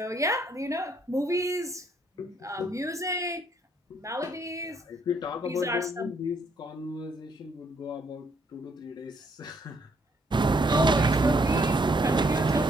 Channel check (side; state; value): both; normal; correlation 0.70